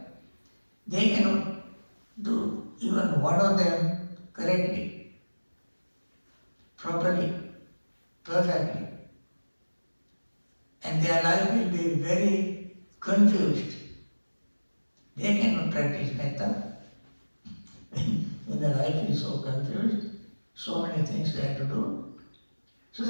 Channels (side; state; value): both; inverted; correlation -1.00